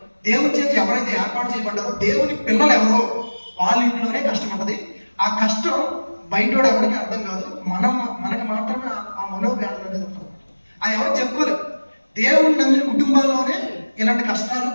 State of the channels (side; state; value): both; inverted; correlation -1.00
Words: దేవుని చేత ఎవరైతే ఏర్పాటు చేయబడ్డారో, దేవుని పిల్లలు ఎవరో వాళ్ళ ఇంట్లోనే కష్టం ఉంటుంది. ఆ కష్టం బయటోడు ఎవరికి అర్థం కాదు, మనకి మాత్రమే ఆ మనోవ్యాధులు అనేది ఉంటుంది. అది ఎవరు చెప్పుకోలేదు. దేవుడు నమ్మిన కుటుంబాల్లోనే ఇలాంటి కష్టాలు,